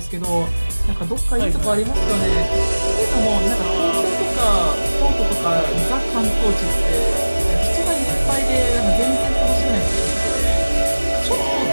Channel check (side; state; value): both; inverted; correlation -1.00